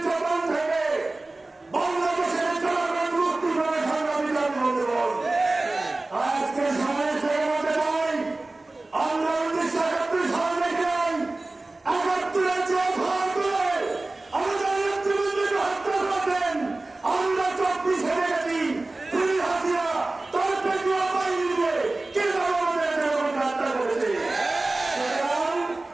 থেকে বাংলাদেশের জনগণ মুক্তি করে সংগ্রামী জাতি বন্ধুগণ, আজকে সময় থেকে বলতে চাই আমরা 1971 সাল থেকে 71-এর যে ভাগ করে আমাদের নেতৃবৃন্দকে হত্যা করেছেন, আমরা 24-এ দেখেছি পুলিশ হাসিনা তার পেটুয়া বাহিনী দিয়ে কিভাবে আমাদের জনগণকে হত্যা করেছে। সুতরাং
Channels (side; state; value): left; quieter; 3.0 dB